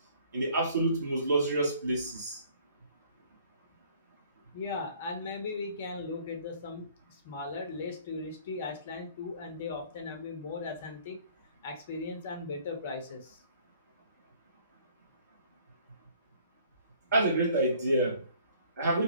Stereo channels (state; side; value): inverted; both; correlation -0.58